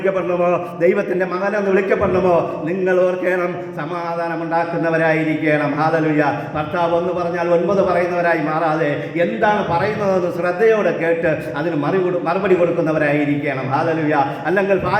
ദൈവത്തിൻ്റെ മകനെന്ന് വിളിക്കപ്പെടണമോ, നിങ്ങൾ ഓർക്കണം സമാധാനം ഉണ്ടാക്കുന്നവരായിരിക്കണം. ഹല്ലേലൂയ. ഭർത്താവ് ഒന്ന് പറഞ്ഞാൽ 9 പറയുന്നവരായി മാറാതെ എന്താണ് പറയുന്നതെന്ന് ശ്രദ്ധയോടെ കേട്ട് അതിന് മറുപടി കൊടുക്കുന്നവരായിരിക്കണം. ഹല്ലേലൂയ. അല്ലെങ്കിൽ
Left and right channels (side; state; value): both; identical; correlation 1.00